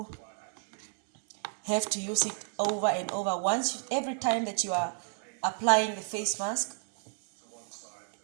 have to use it over and over. Every time that you are applying the face mask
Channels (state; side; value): silent; left; 56 dB below the other